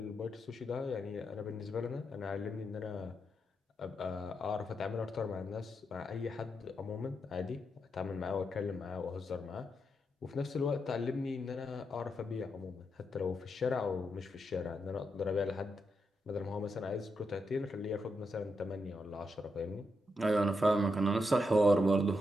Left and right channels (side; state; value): both; normal; correlation 0.83